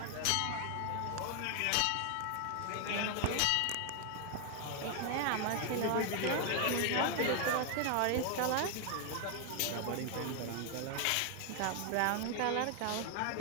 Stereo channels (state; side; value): different; both; correlation 0.00